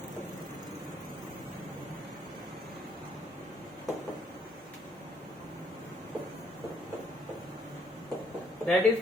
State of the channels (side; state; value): both; normal; correlation 0.67